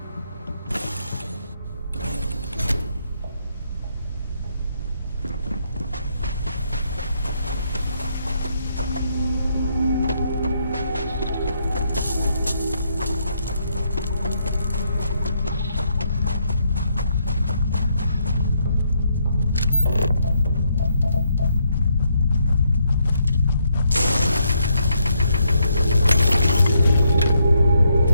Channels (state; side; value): inverted; both; correlation -0.75